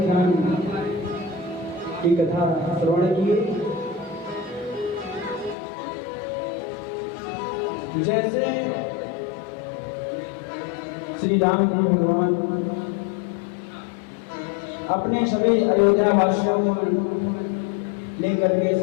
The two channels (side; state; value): right; drops out; at 5.6 s